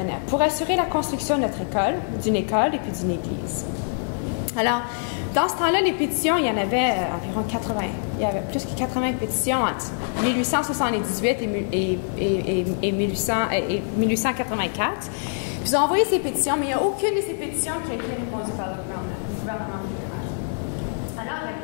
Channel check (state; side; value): silent; right; digital silence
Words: Pour assurer la construction de notre école, d'une école et puis d'une église. Alors, dans ce temps-là, les pétitions, il y en avait environ 80. Il y avait plus que 80 pétitions entre 1878 et 1884. Puis ils ont envoyé ces pétitions, mais il n'y a aucune de ces pétitions qui a été répondue par le gouvernement fédéral. Alors,